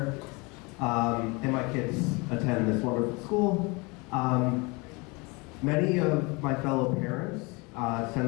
And my kids attend this wonderful school. Many of my fellow parents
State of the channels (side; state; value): right; quieter; 27.5 dB